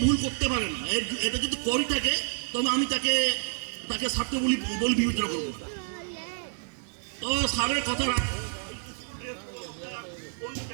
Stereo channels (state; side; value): silent; left; digital silence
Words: ভুল করতে পারে না, এটা যদি করি থাকে তবে আমি তাকে ছাত্র বলে বিবেচনা করবো। তো স্যারের কথা